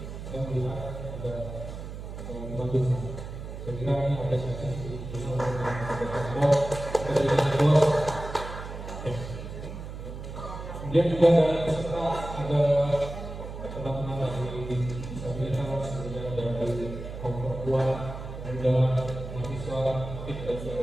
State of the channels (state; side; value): noise; right; hum, 9 dB below the sound